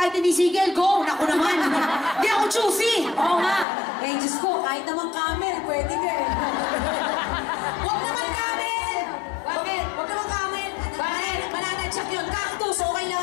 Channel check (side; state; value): right; drops out; at 3.7 s